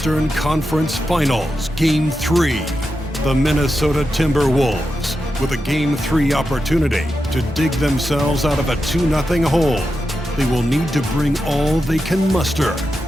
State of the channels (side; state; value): both; normal; correlation 0.89